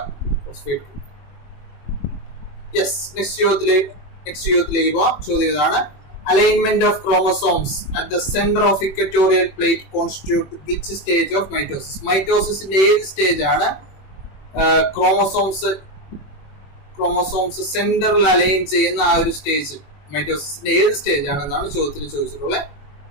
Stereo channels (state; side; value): late; right; 21 ms